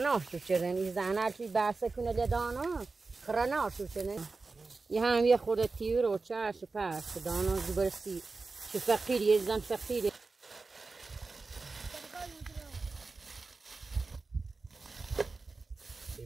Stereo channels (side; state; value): left; quieter; 3.9 dB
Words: شدن این زنه چی بحث کنه لدانا خرناش شدن یه هم یه خورده تیور و چش و پس دانا زبرستی چه فقیری یه زن فقیری